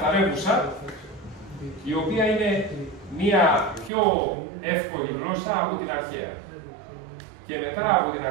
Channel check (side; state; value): left; drops out; at 3.9 s